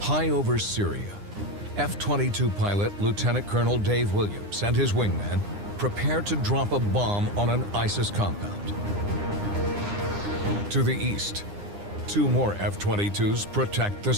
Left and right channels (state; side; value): late; left; 9.8 ms